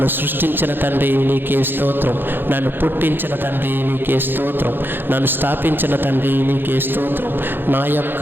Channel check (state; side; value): late; left; 0.099 ms